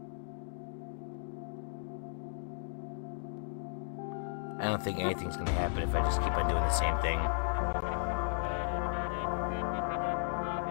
I don't think anything's gonna happen if I just keep on doing the same thing.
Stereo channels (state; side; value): silent; right; digital silence